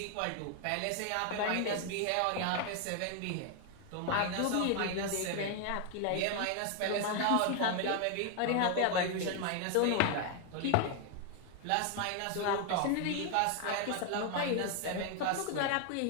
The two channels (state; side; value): different; both; correlation 0.00